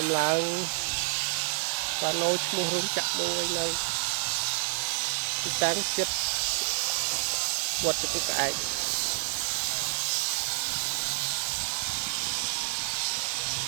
ដំឡើងបានណូឈ្មោះរោងចក្រមួយនៅទីតាំងចិត្តវត្តចំពោះក្អែក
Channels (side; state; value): left; silent; digital silence